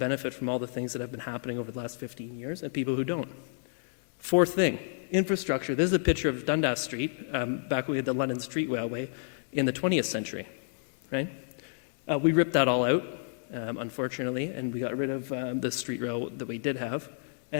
from all the things that have been happening over the last 15 years and people who don't. Fourth thing, infrastructure. This is a picture of Dundas Street, back when we had the London Street Railway in the 20th century, right? We ripped that all out, unfortunately, and we got rid of the street rail that we did have.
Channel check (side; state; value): right; silent; digital silence